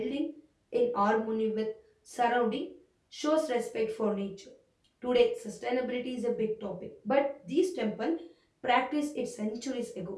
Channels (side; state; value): both; identical; correlation 1.00